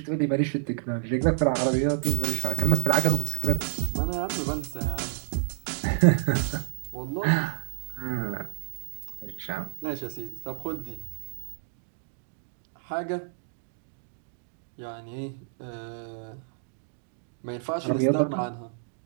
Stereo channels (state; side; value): silent; left; digital silence